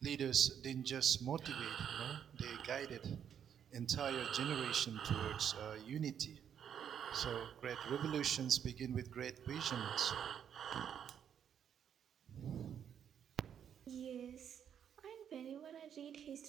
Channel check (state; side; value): quieter; left; 8.7 dB